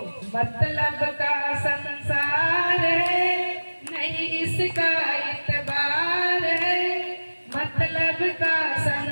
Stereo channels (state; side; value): inverted; both; correlation -1.00